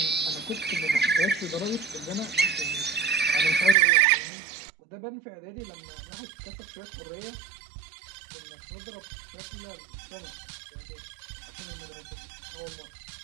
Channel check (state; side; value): drops out; left; at 3.8 s